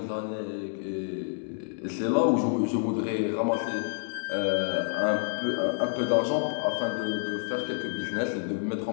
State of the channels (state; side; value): silent; right; digital silence